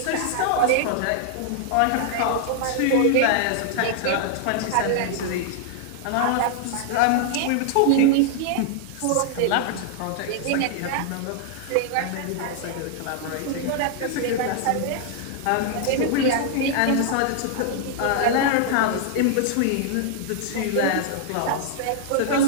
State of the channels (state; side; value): different; both; correlation 0.00